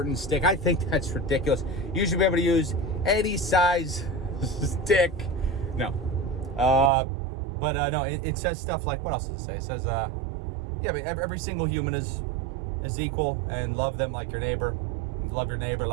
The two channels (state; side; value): drops out; left; at 6.9 s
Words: stick. I think that's ridiculous. You should be able to use any size stick. No. No, it says stuff like, what else does it say? It says, but every single human is equal, and love them like your neighbor. Love your neighbor